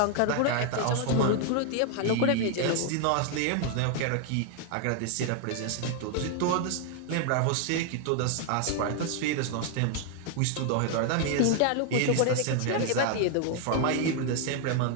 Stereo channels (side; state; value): both; different; correlation 0.00